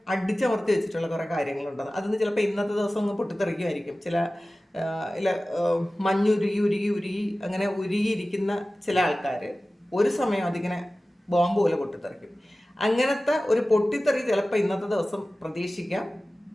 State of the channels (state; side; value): normal; both; correlation 0.96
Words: അടിച്ചമർത്തി വെച്ചിട്ടുള്ള കുറേ കാര്യങ്ങളുണ്ട്. അതൊന്ന് ചിലപ്പോൾ ഇന്നത്തെ ദിവസം ഒന്ന് പൊട്ടിത്തെറിക്കുമായിരിക്കും. ചില മഞ്ഞുരുകി ഉരുകി ഉരുകി അങ്ങനെ ഉരുകിയിരിക്കുന്ന ചില ആൾക്കാർ ഒരു സമയം അതിങ്ങനെ ബോംബ് പോലെ പൊട്ടിത്തെറിക്കും. അങ്ങനത്തെ ഒരു പൊട്ടിത്തെറി ചിലപ്പോൾ ഇന്നത്തെ ദിവസം പ്രതീക്ഷിക്കാം.